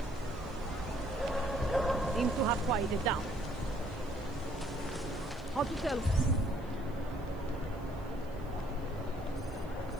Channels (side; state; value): right; noise; hiss, 29 dB below the sound